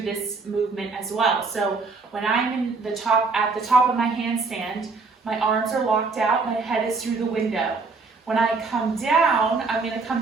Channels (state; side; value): quieter; left; 4.2 dB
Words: this movement as well. So when I'm at the top of my handstand, my arms are locked out, my head is through the window. When I come down, I'm going to come